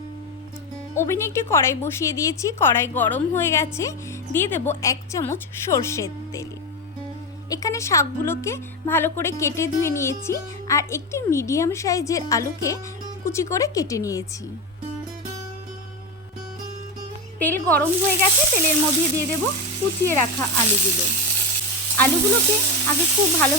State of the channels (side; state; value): both; normal; correlation 0.15